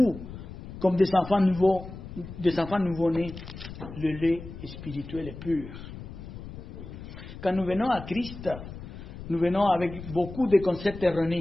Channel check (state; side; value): noise; left; rumble, 12 dB below the sound